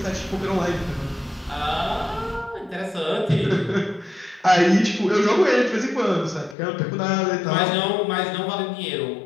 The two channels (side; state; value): right; drops out; at 6.6 s